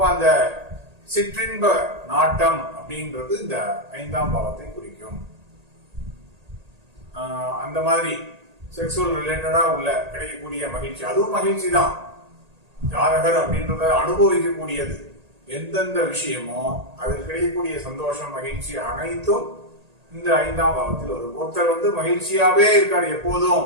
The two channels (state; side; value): late; left; 1.8 ms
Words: அந்த சிற்றின்ப நாட்டம் அப்படின்றது இந்த 5ஆம் பாவத்தை குறிக்கும். அந்த மாதிரி செக்ஷுவல் ரிலேட்டடா உள்ள கிடைக்கக்கூடிய மகிழ்ச்சி, அதுவும் மகிழ்ச்சி தான். ஜாதகர் அப்படின்றத அனுபவிக்கக்கூடியது எந்தெந்த விஷயமோ அதில் கிடைக்கக்கூடிய சந்தோஷம், மகிழ்ச்சி அனைத்தும் இந்த 5ஆம் பாவத்தில் வரும். ஒருத்தர் மகிழ்ச்சியாவே இருக்காரு